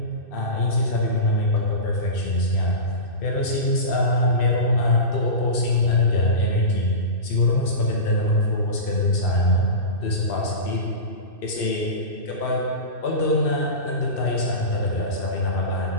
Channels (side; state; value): right; late; 2.6 ms